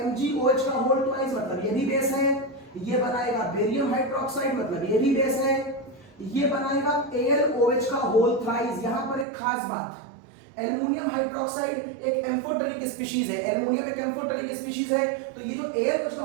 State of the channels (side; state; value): left; drops out; at 9.2 s